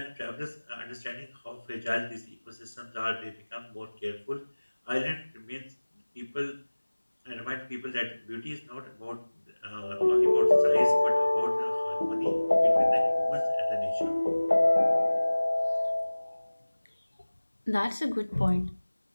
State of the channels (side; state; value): both; inverted; correlation -1.00